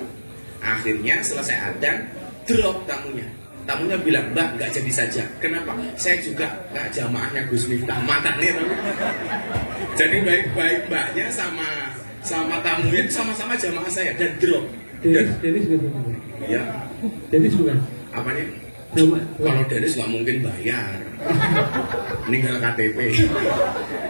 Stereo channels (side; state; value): both; inverted; correlation -1.00